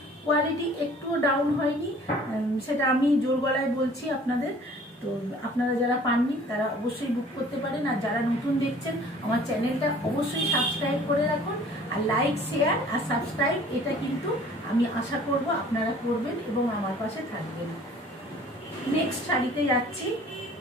কোয়ালিটি একটুও ডাউন হয়নি, সেটা আমি জোর গলায় বলছি আপনাদের। তো আপনারা যারা পাননি তারা অবশ্যই বুক করতে পারেন, আর যারা নতুন দেখছেন আমার চ্যানেলটা অবশ্যই সাবস্ক্রাইব করে রাখুন, আর লাইক শেয়ার আর সাবস্ক্রাইব এটা কিন্তু আমি আশা করব আপনারা করবেন এবং আমার পাশে থাকবেন। নেক্সট শাড়িতে যাচ্ছি,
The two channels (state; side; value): normal; both; correlation 0.51